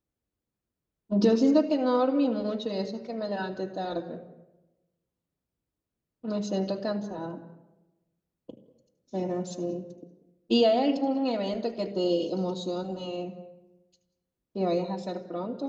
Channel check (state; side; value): identical; both; correlation 1.00